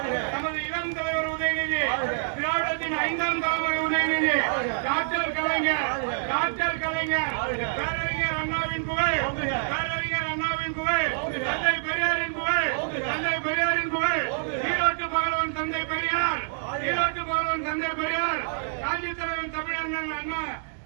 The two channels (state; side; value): silent; left; digital silence